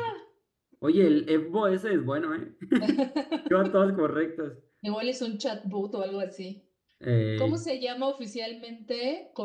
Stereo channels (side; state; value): both; identical; correlation 1.00